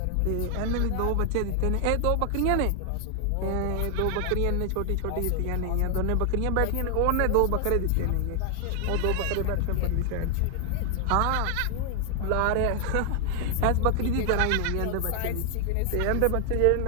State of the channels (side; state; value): both; different; correlation 0.00